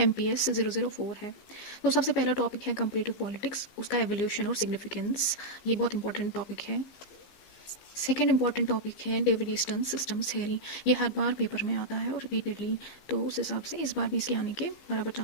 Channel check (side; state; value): right; late; 15 ms